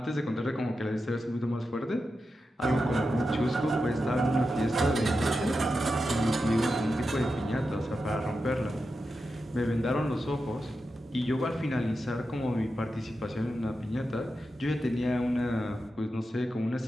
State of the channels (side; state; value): both; normal; correlation 0.89